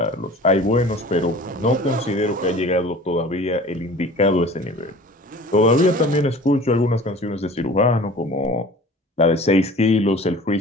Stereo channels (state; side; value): normal; both; correlation 0.44